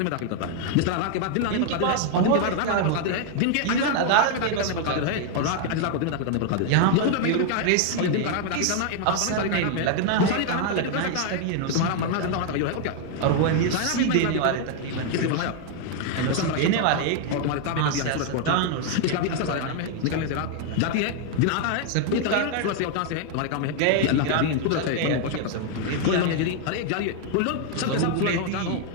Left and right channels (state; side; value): different; both; correlation 0.00